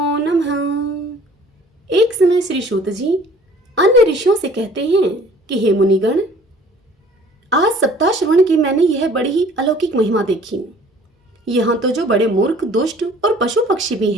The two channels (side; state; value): both; normal; correlation 0.53